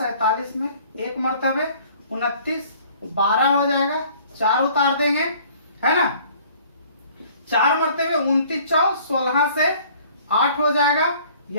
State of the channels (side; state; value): both; inverted; correlation -0.54